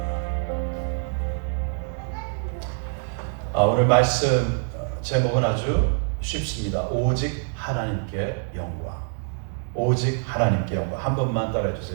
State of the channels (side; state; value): left; silent; 62 dB below the other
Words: 오늘 말씀 제목은 아주 쉽습니다. 오직 하나님께 영광. 오직 하나님께 영광. 한 번만 따라해